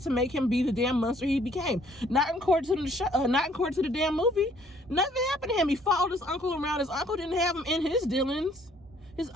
to make him be the damn monster he became. Not according to the show, not according to the damn movie. Nothing happened to him. He followed his uncle around. His uncle didn't have him in his dealings. His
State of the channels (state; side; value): normal; both; correlation 0.62